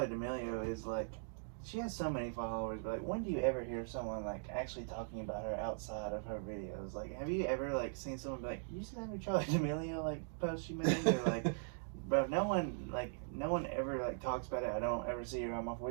D'Amelio is like, she has so many followers, but like, when do you ever hear someone like actually talking about her outside of her videos? Like, have you ever like seen someone be like, "You see that new Charli D'Amelio like post she made?" Or like, bro, no one ever like talks about it. I don't ever see her on my For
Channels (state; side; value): silent; left; digital silence